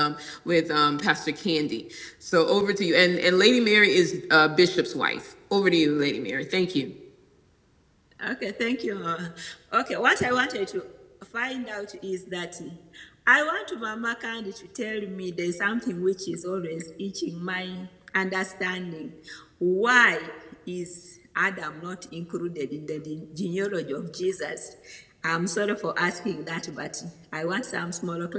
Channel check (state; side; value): identical; both; correlation 1.00